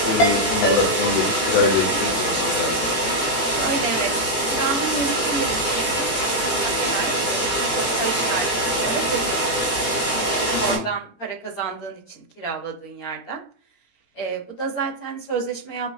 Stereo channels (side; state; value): right; late; 18 ms